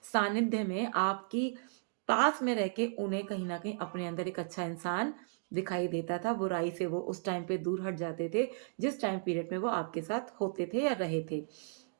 सानिध्य में, आपकी पास में रह के उन्हें कहीं न कहीं अपने अंदर एक अच्छा इंसान दिखाई देता था। बुराई से वो उस टाइम पे दूर हट जाते थे, जिस टाइम पीरियड में वो आपके साथ होते थे या रहे थे।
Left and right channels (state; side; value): silent; left; digital silence